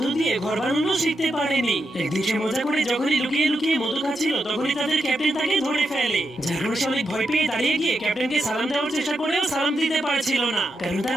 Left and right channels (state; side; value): normal; both; correlation 0.85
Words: দিয়ে ঘর বানানো শিখতে পারেনি। একদিন সে মজা করে যখনই লুকিয়ে লুকিয়ে মধু খাচ্ছিল, তখনই তাদের ক্যাপ্টেন তাকে ধরে ফেলে। যার কারণে সে অনেক ভয় পেয়ে দাঁড়িয়ে গিয়ে ক্যাপ্টেনকে সালাম দেওয়ার চেষ্টা করেও সালাম দিতে পারছিল না, কারণ